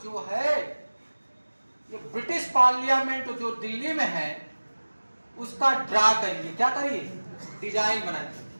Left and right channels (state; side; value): inverted; both; correlation -1.00